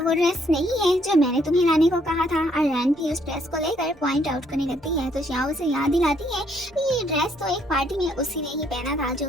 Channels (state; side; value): normal; both; correlation 0.69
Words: वो ड्रेस नहीं है जो मैंने तुम्हें लाने को कहा था और रैन भी उस ड्रेस को लेकर पॉइंट आउट करने लगती है। तो श्याओ उसे याद दिलाती है कि ये ड्रेस तो एक पार्टी में उसी ने ही पहना था जो